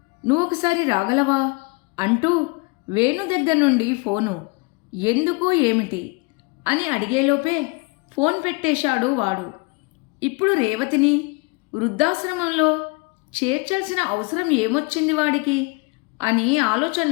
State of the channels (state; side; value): quieter; right; 28.1 dB